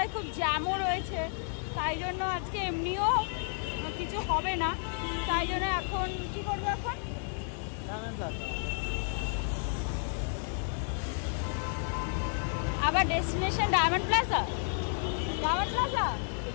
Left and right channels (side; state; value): right; silent; 57 dB below the other